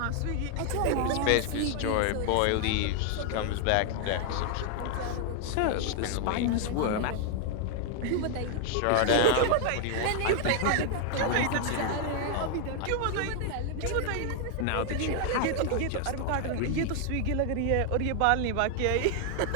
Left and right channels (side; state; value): both; different; correlation 0.00